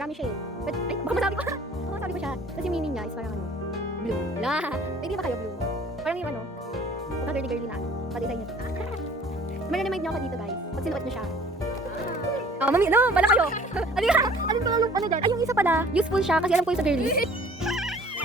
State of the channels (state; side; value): normal; both; correlation 0.51